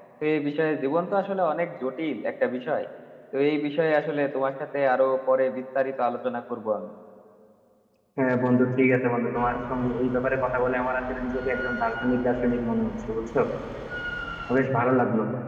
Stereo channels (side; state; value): both; identical; correlation 1.00